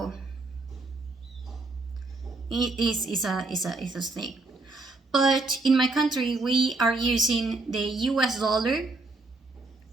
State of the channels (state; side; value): quieter; left; 3.2 dB